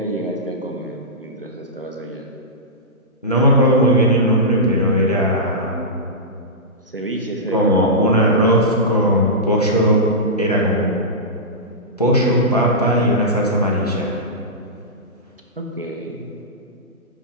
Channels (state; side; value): normal; both; correlation -0.14